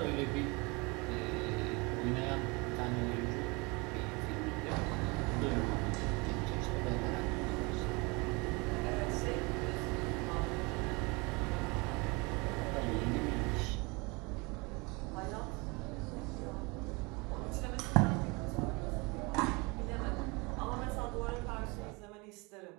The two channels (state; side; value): quieter; left; 27.4 dB